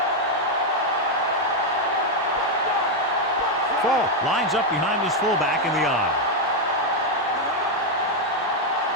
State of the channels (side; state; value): both; normal; correlation 0.02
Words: Falk lines up behind his fullback in the eye.